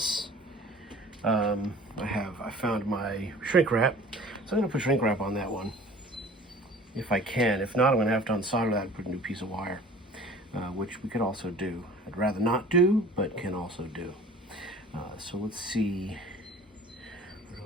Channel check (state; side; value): normal; both; correlation 0.46